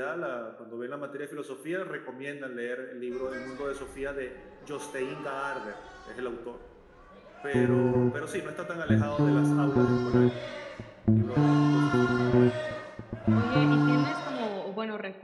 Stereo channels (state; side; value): identical; both; correlation 1.00